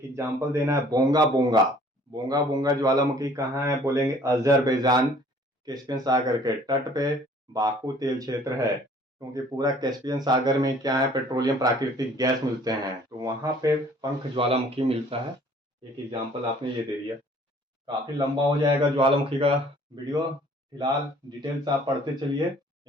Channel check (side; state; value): both; normal; correlation 0.55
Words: एग्जाम्पल देना है, बोंगा बोंगा, बोंगा बोंगा ज्वालामुखी कहाँ है, बोलेंगे अजरबैजान कैस्पियन सागर के तट पे बाकू तेल क्षेत्र है, क्योंकि पूरा कैस्पियन सागर में क्या है, पेट्रोलियम प्राकृतिक गैस मिलते हैं, तो वहां पे पंख ज्वालामुखी मिलता है। एक एग्जाम्पल आपने ये दे दिया। काफी लंबा हो जाएगा ज्वालामुखी का वीडियो, फिलहाल डिटेल्स आप पढ़ते चलिए,